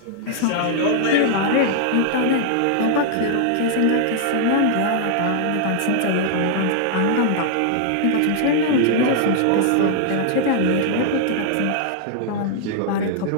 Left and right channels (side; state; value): both; different; correlation -0.01